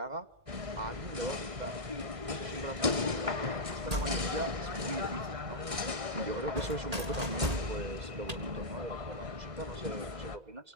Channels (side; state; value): left; late; 1.6 ms